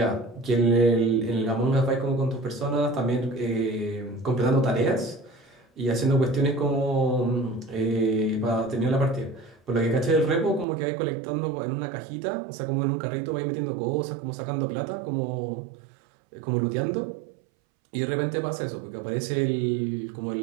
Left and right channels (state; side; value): drops out; left; at 10.7 s